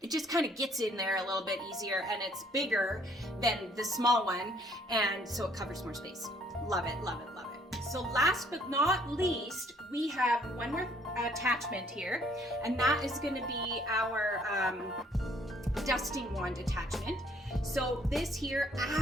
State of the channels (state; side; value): normal; both; correlation 0.63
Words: it just kind of gets in there a little bit easier, and it's bigger than the small one, and so it covers more space. Love it, love it, love it. So last but not least, we have one more attachment here, and that is going to be our dusting wand attachment. So this here,